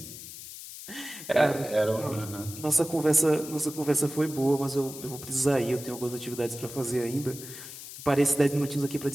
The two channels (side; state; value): left; noise; hiss, 12 dB below the sound